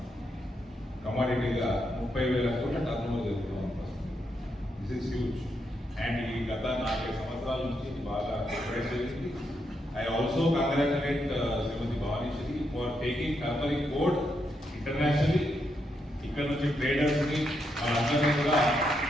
కమాడిటీగా 30,000 కోట్ల టర్న్ ఓవర్ చేస్తున్నాం పసుపు. This is huge. అండ్ ఈ గత 4 సంవత్సరాల నుంచి బాగా ప్రిపేర్ చేసింది. I also congratulate Srimati Bhavaneswari for taking turmeric code internationally. ఇక్కడ నుంచి ట్రేడర్స్ ని వాళ్ళందరినీ కూడా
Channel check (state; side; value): normal; both; correlation 0.81